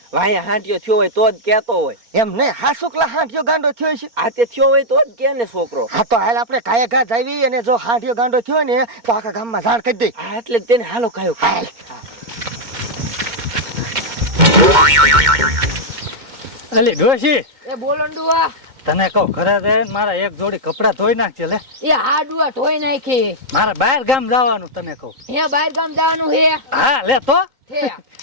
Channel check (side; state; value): left; late; 2.1 ms